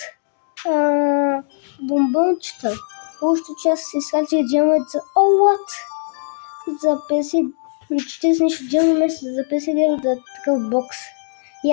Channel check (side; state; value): right; silent; digital silence